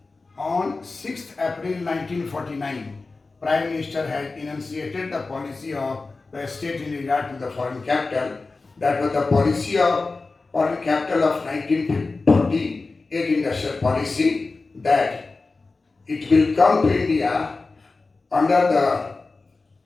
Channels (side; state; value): right; quieter; 3.7 dB